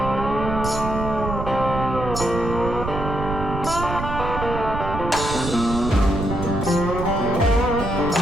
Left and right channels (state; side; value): noise; right; rumble, 5 dB below the sound